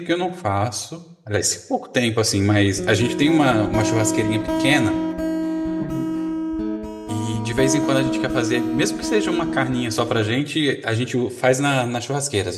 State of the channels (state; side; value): identical; both; correlation 1.00